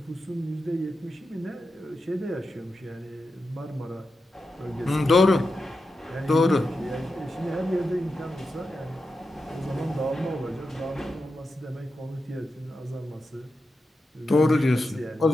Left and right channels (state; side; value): normal; both; correlation 0.89